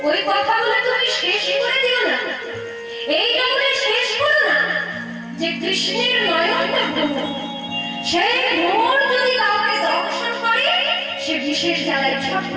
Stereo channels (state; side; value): identical; both; correlation 1.00